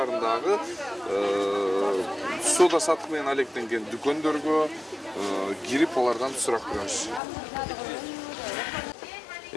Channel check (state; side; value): drops out; right; at 7.2 s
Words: соода саттык менен алектенген дүкөндөргө кирип алардан сурак беребиз.